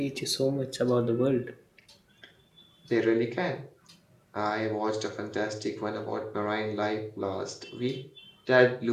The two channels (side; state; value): both; identical; correlation 1.00